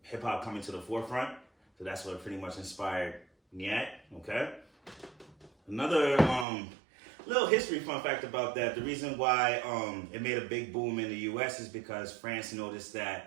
hip hop coming to the forefront. So that's what pretty much inspired Nyack. Okay. Another little history fun fact about that. The reason why it made a big boom in the U.S. is because France noticed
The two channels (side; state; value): left; drops out; at 6.5 s